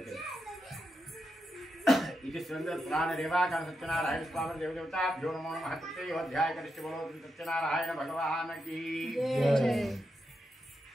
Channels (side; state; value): both; normal; correlation 0.85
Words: ఇది పురాణ దేవాకాండ సత్యనారాయణ స్వామి దేవదేవతాభ్యో నమో నమః. అధ్యాయ కరిష్టి బలో సత్యనారాయణ భగవానకి